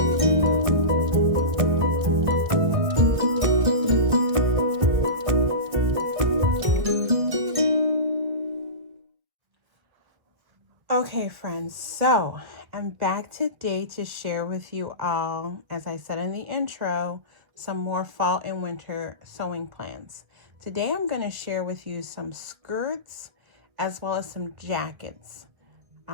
Okay, friends, so I'm back today to share with you all, as I said in the intro, some more fall and winter sewing plans. Today I'm going to share with you some skirts as well as some jackets.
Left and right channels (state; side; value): late; left; 1.6 ms